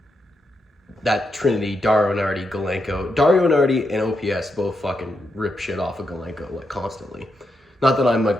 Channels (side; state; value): both; normal; correlation 0.84